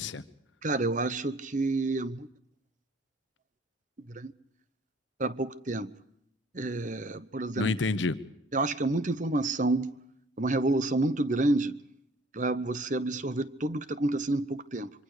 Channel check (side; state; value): both; normal; correlation 0.55